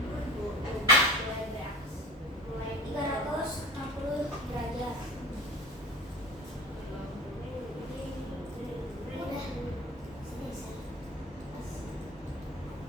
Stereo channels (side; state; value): both; normal; correlation 0.36